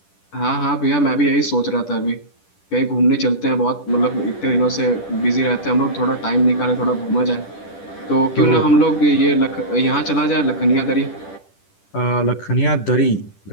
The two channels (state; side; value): late; right; 10 ms